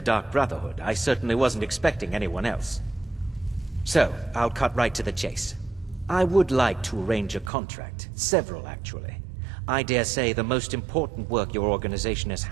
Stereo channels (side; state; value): left; drops out; at 7.5 s